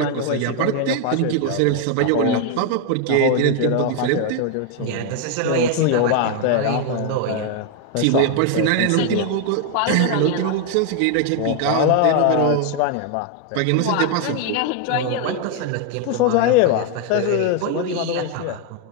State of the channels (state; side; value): different; both; correlation 0.01